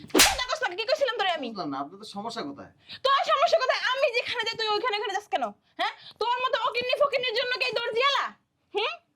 কি করছিলাম তোরে আমি? বুঝলাম না আপনাদের সমস্যা কোথায়? তোর সমস্যা কোথায়? আমি যেখানে যাই তুই ওইখানে ওখানে যাস কেন? হ্যাঁ তোর মতো অকিন্নি ফকিন্নির জন্য কি দর্জিয়ালা? হুম?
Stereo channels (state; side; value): identical; both; correlation 1.00